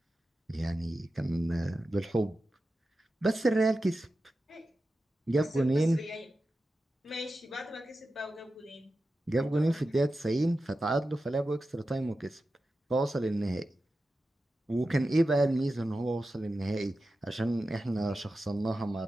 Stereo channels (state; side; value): normal; both; correlation 0.92